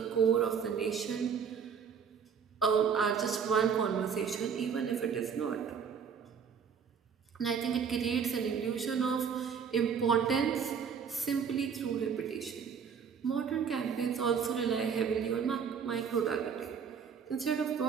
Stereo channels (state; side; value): quieter; left; 6.8 dB